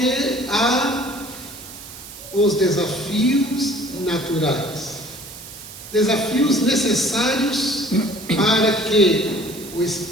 há os desafios naturais, desafios necessários para que o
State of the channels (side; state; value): right; noise; hiss, 15 dB below the sound